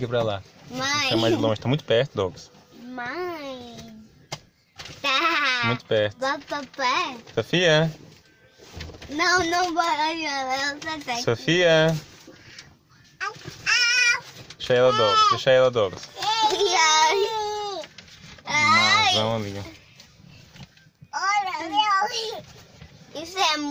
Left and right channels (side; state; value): both; identical; correlation 1.00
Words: pra lá. Mãe. Fica mais longe, tá muito perto, Douglas. Mãe. Tá. Muito perto. Papai. Sofia? Não, não vai. Eu só Sofia? Deixa ela, Douglas. Deixa ela, Douglas. Mazão ali. Olha, isso é